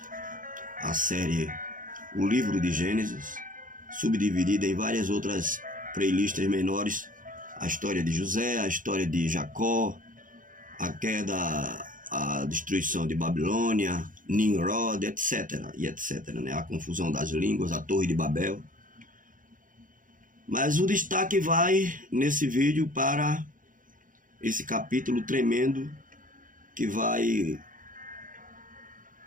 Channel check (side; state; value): left; late; 0.39 ms